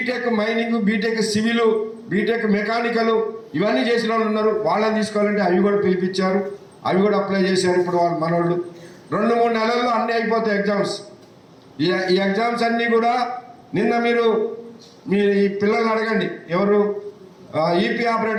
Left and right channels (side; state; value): both; identical; correlation 1.00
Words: mining, BTech civil, BTech mechanical ఇవన్నీ చేసిన వాళ్ళు ఉన్నారు, వాళ్ళని తీసుకోవాలంటే అవి కూడా పిలిపించారు. అవి కూడా అప్లై చేశారు. ఇప్పుడు వాళ్ళు మనోళ్ళు 2-3 నెలల్లో అన్నీ అయిపోతాయి ఎగ్జామ్స్. ఈ ఎగ్జామ్స్ అన్నీ కూడా నిన్న మీరు ఈ పిల్లల్ని అడగండి, ఎవరు ఈపీ